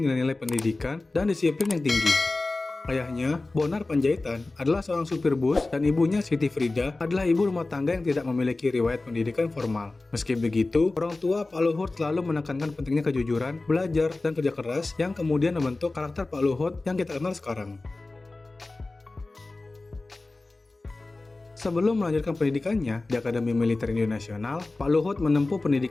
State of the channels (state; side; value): quieter; right; 3.2 dB